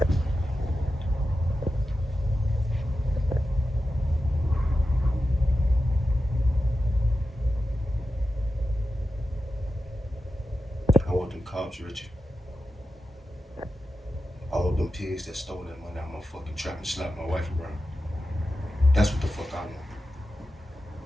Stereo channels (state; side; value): normal; both; correlation 0.91